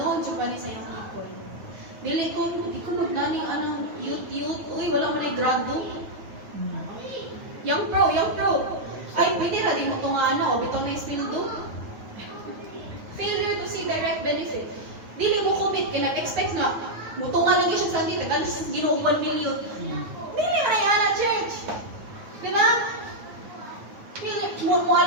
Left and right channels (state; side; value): late; left; 9.5 ms